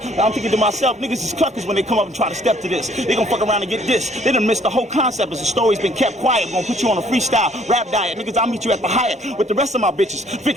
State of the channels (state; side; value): normal; both; correlation 0.61